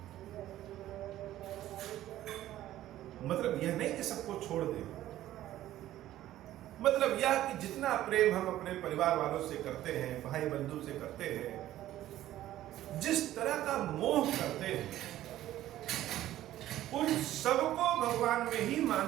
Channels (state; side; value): quieter; left; 13.7 dB